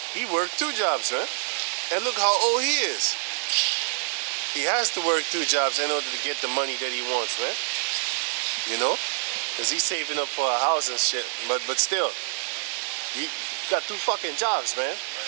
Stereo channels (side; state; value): left; silent; digital silence